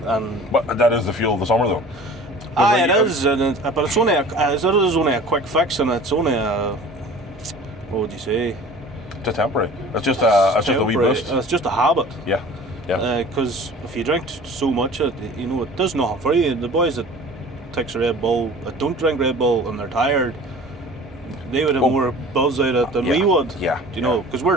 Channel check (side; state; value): both; normal; correlation 0.44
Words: and But that is the fuel of the summer, though. it is, but it's only a quick fix, and it's only a, what would you say? It's temporary. It's just a wee Temporary. boost. It's just a habit. Yeah. Yeah. Because if you drink so much, it does nothing for you. The boys that takes a Red Bull, that don't drink Red Bull, and they're tired, they would have more buzz out of it than we would. Yeah. You know, because